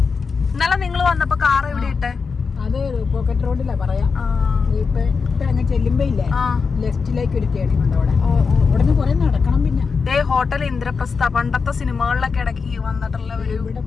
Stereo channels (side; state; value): right; quieter; 5.2 dB